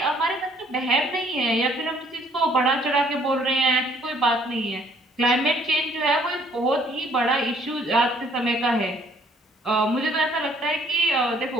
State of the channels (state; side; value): normal; both; correlation 0.60